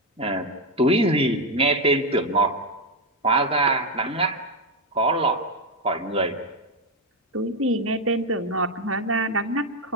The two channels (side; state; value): both; normal; correlation 0.07